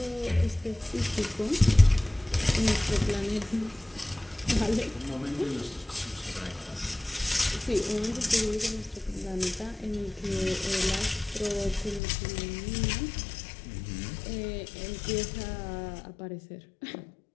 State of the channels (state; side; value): drops out; right; at 12.0 s